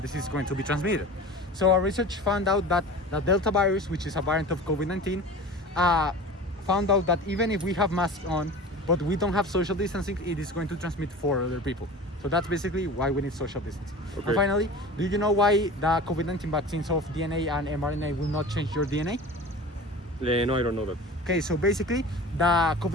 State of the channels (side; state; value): both; normal; correlation 0.37